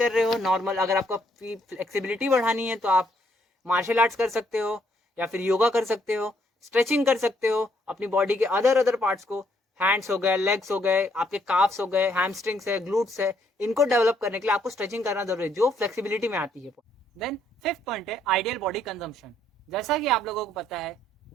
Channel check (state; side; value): normal; both; correlation 0.70